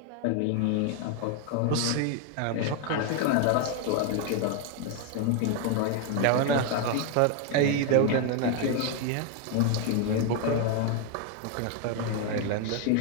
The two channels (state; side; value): different; both; correlation 0.01